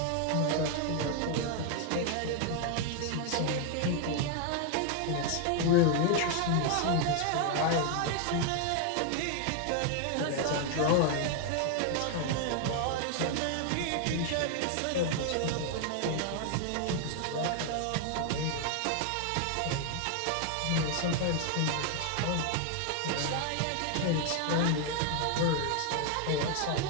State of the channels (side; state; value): both; different; correlation 0.00